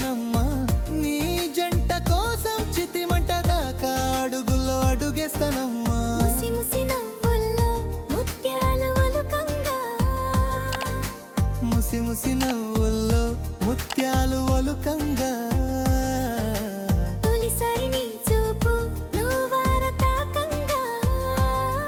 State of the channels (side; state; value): both; identical; correlation 1.00